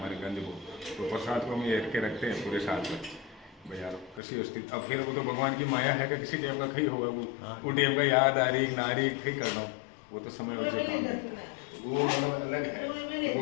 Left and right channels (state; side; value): drops out; right; at 4.2 s